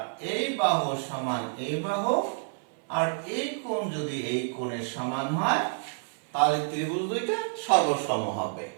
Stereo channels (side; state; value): left; silent; 56 dB below the other